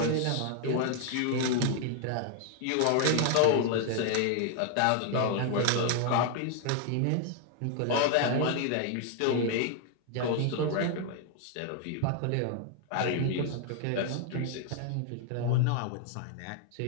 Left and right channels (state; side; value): different; both; correlation 0.00